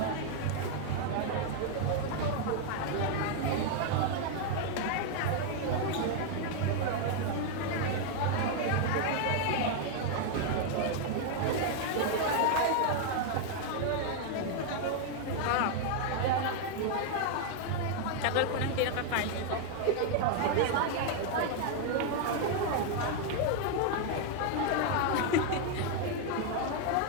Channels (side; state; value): both; different; correlation 0.00